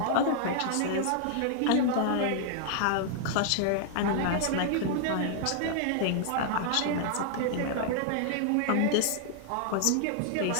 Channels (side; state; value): both; different; correlation 0.00